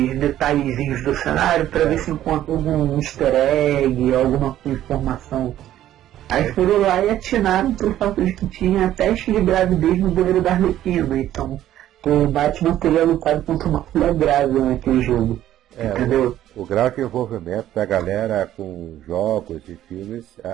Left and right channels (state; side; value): quieter; left; 12.5 dB